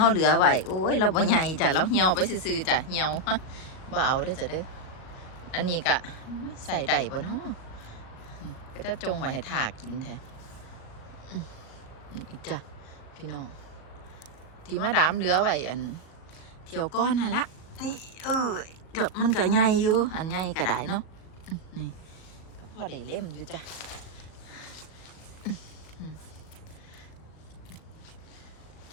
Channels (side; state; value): right; late; 37 ms